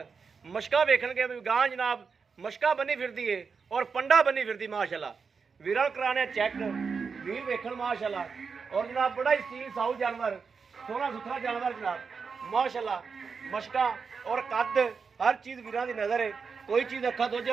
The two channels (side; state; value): left; quieter; 5.4 dB